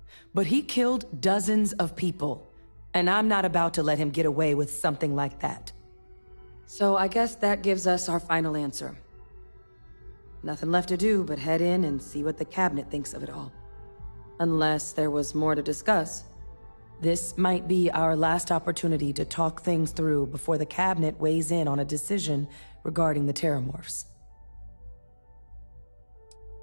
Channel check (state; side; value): inverted; both; correlation -1.00